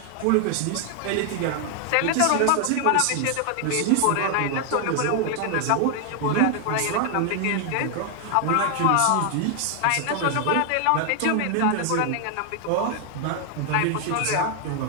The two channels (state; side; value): different; both; correlation 0.00